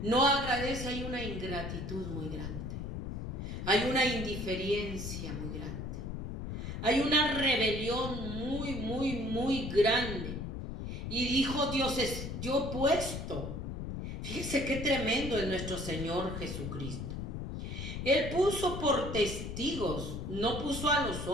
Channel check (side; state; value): left; noise; rumble, 5 dB below the sound